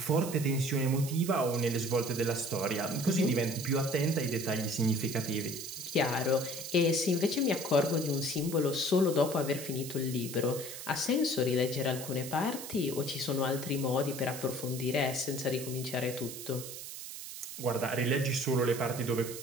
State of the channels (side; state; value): right; noise; hiss, 10 dB below the sound